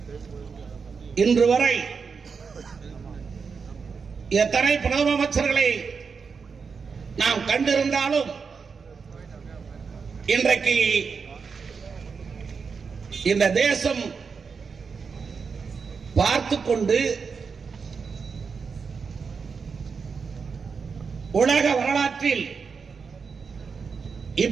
இன்று வரை எத்தனை பிரதம அமைச்சர்களை நாம் கண்டிருந்தாலும் இன்றைக்கு இந்த தேசம் பார்த்துக் கொண்டு உலக வரலாற்றில்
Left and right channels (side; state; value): left; quieter; 5.5 dB